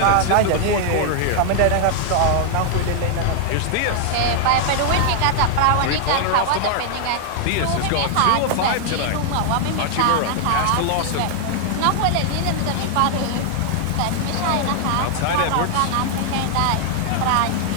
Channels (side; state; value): both; different; correlation 0.00